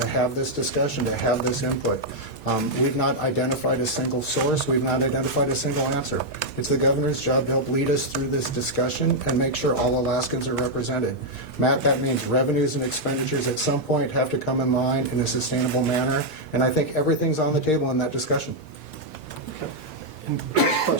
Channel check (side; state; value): both; normal; correlation -0.03